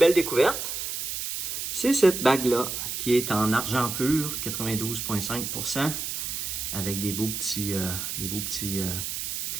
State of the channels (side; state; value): right; noise; hiss, 4 dB below the sound